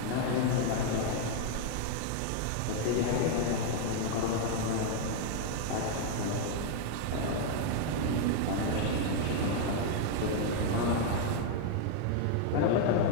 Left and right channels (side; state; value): both; different; correlation 0.00